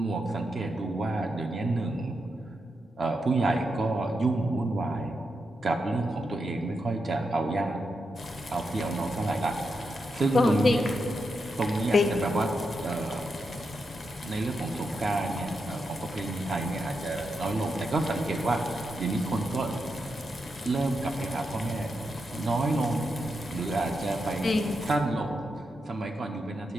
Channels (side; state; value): both; normal; correlation 0.85